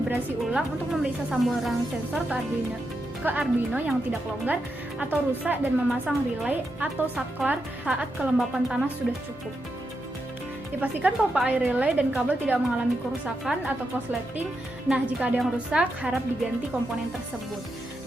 ulang untuk memeriksa saluran sensor ke Arduino yang tidak longgar atau rusak dan memasang relay atau saklar saat kelembapan tanah sudah cukup. Dipastikan pompa air relay dan kabel tidak mengalami kerusakan atau korsleting. Nah, jika ada yang rusak, harap diganti komponen tersebut.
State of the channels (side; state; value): both; normal; correlation 0.85